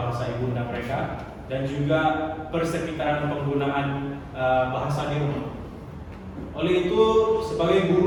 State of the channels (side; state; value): both; identical; correlation 1.00